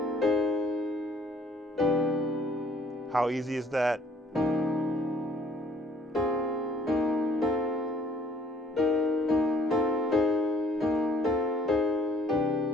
How easy is that?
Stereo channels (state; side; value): normal; both; correlation 0.58